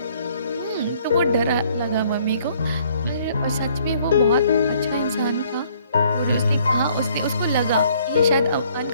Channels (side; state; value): both; inverted; correlation -0.62